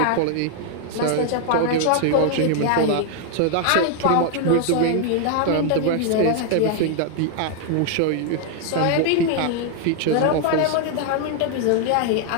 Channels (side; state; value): both; different; correlation 0.00